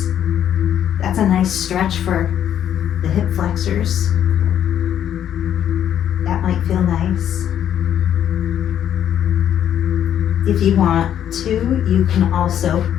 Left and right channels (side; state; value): right; quieter; 10.1 dB